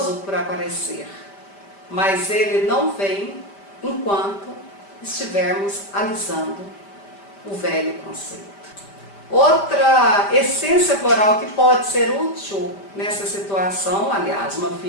por aparecer, mas ele não vem enquanto estivermos alisando o velho conceito. Outra essência floral que pode ser útil nessa situação, aliás, uma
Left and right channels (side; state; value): right; late; 5.1 ms